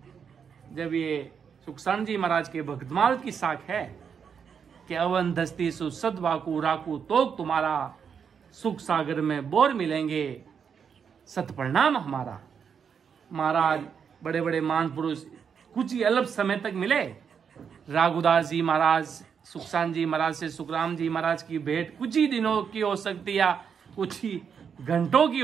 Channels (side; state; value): left; quieter; 7.0 dB